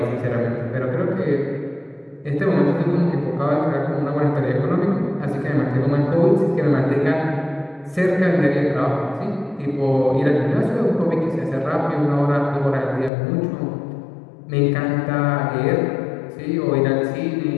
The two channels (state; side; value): drops out; right; at 13.1 s